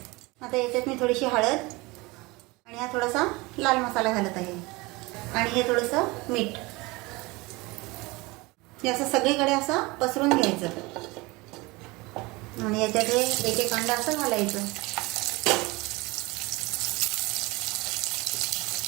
आता याच्यात मी थोडीशी हळद आणि हा थोडासा लाल मसाला घालत आहे आणि हे थोडंसं मीठ. हे असं सगळीकडे असं पसरून घ्यायचं आणि याच्यात एक एक अंडा असं घालायचं.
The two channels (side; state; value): left; quieter; 23.5 dB